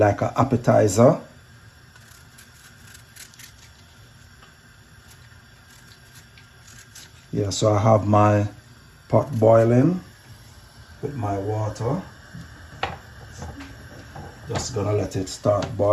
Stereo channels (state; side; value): identical; both; correlation 1.00